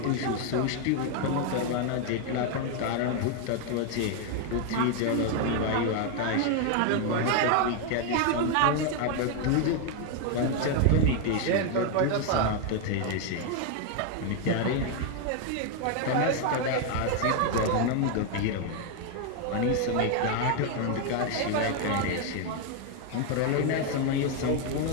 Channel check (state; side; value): different; both; correlation 0.01